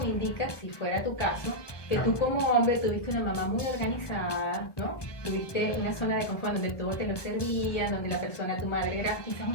indica, si fuera tu caso, que tú como hombre tuviste una mamá muy organizada, ¿no? Tuviste una zona de confort donde todo te lo servía, donde la persona, tu madre, era quizás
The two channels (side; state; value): right; late; 1.2 ms